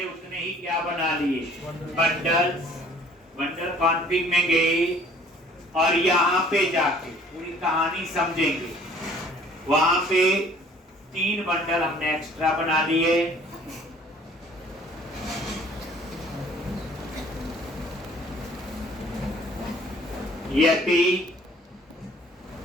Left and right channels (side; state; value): both; normal; correlation 0.55